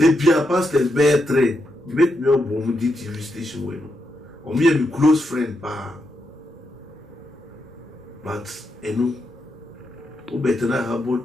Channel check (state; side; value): normal; both; correlation 0.83